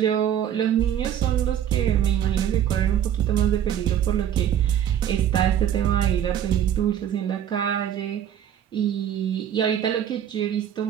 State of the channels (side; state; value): left; quieter; 10.0 dB